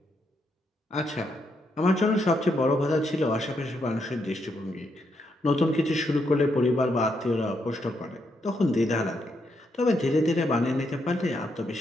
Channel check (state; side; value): normal; both; correlation 0.79